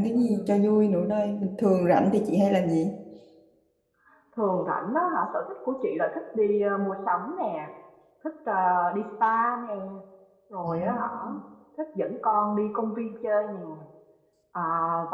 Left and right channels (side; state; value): both; identical; correlation 1.00